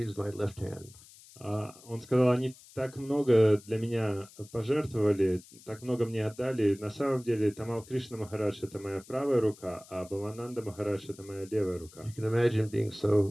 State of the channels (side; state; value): left; noise; hiss, 22 dB below the sound